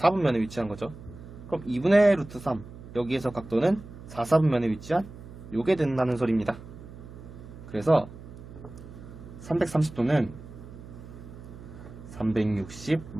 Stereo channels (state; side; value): noise; right; hum, 16 dB below the sound